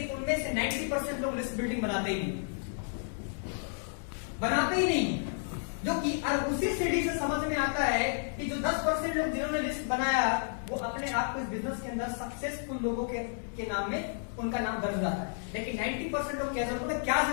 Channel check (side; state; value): right; silent; digital silence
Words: उनमें से 90% लोग लिस्ट बिल्डिंग बनाते ही नहीं, जो कि और उसी सीढ़ी से समझ में आता है कि जो 10% लोग जिन्होंने लिस्ट बनाया वो अपने आप को इस बिजनेस के अंदर सक्सेसफुल लोगों के नाम में उनका नाम दर्ज आता है। लेकिन 90% लोग क्या जरूरत है? क्या